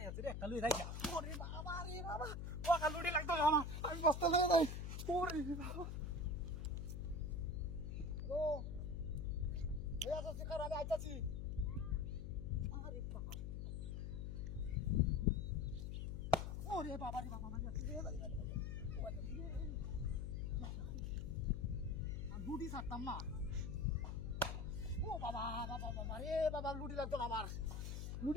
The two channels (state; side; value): noise; left; hum, 4 dB below the sound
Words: আছে রে একটা লুই রাখা ওরে বাবা রে বাবা ওকা লুডি লাগতো আমার আমি বসতে লাগে নাই ওরে বাবা হ্যালো হয়ে যাচ্ছে কারণ আমি আইতাছি আরে বাবা ওরে বাবা রে বাবা মারি আছে রে লুডি ছাড়তাম না ও বাবা বাবা বাবা রে বাবা লুডি লাগতো না আমার